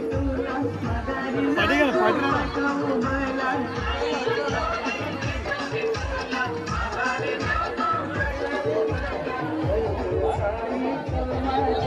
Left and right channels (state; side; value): identical; both; correlation 1.00